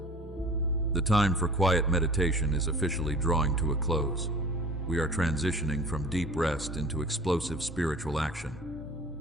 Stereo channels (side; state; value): both; normal; correlation 0.43